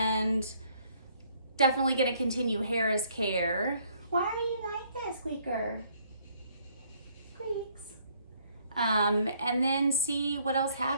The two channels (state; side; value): inverted; both; correlation -0.65